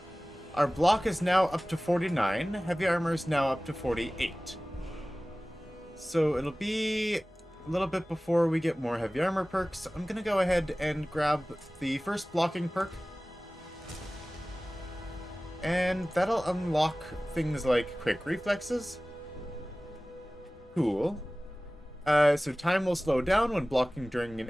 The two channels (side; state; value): both; normal; correlation 0.98